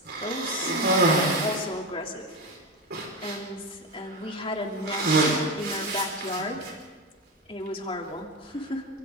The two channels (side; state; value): both; normal; correlation 0.17